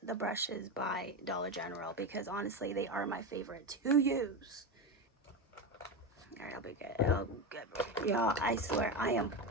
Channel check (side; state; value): both; normal; correlation 0.17